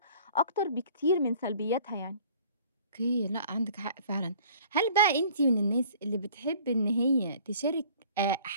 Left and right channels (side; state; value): both; inverted; correlation -0.51